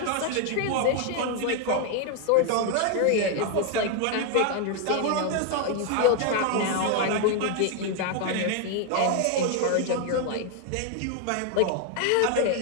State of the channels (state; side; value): different; both; correlation 0.00